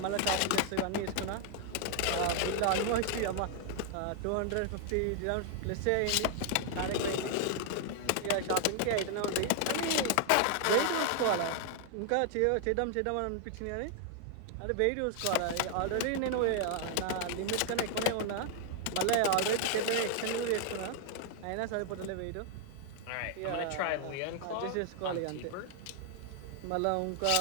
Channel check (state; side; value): different; both; correlation 0.00